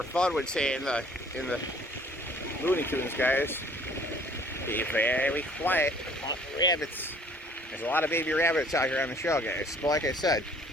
Fudd would say in the Looney Tunes, guys. Be very quiet, hunt rabbits. There's a lot of baby rabbits out here on the show, guys. But like I said,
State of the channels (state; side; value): normal; both; correlation 0.55